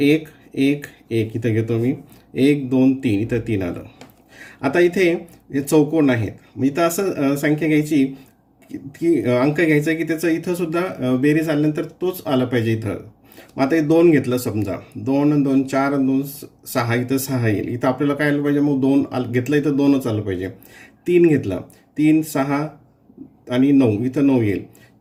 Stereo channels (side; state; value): both; identical; correlation 1.00